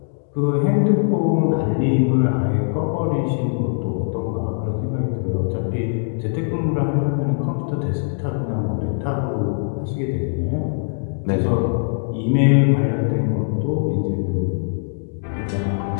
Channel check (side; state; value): right; silent; digital silence